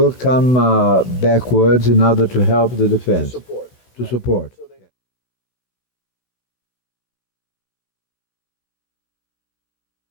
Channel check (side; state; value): right; late; 16 ms